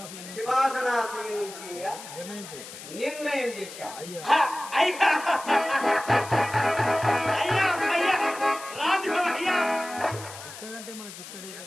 సింహాసనాసీనుడిగా నిర్ణయం చేశాం.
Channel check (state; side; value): noise; left; hiss, 13 dB below the sound